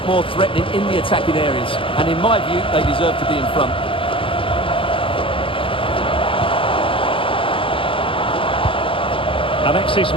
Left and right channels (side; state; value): right; late; 0.26 ms